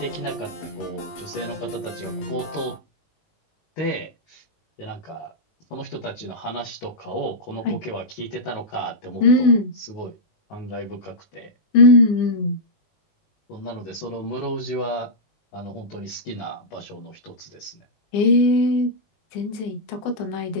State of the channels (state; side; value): late; right; 19 ms